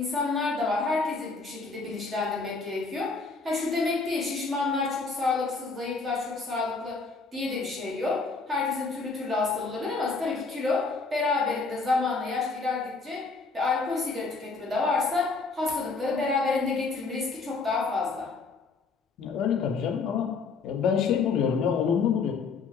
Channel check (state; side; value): quieter; right; 4.3 dB